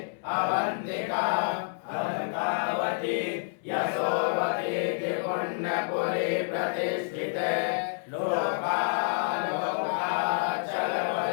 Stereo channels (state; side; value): silent; right; 59 dB below the other